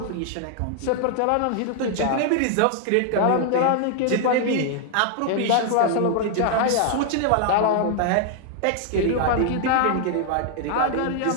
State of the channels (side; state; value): both; different; correlation 0.00